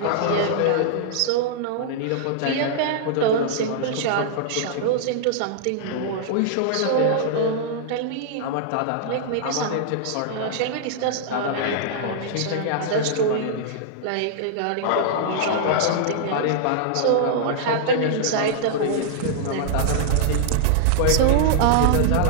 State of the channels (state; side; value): different; both; correlation -0.01